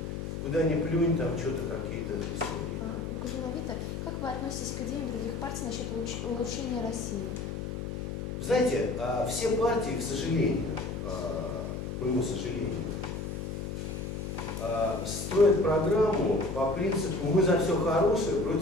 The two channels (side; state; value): left; noise; hum, 5 dB below the sound